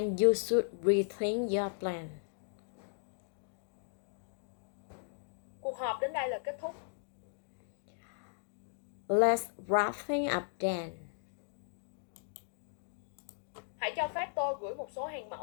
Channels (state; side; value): silent; right; digital silence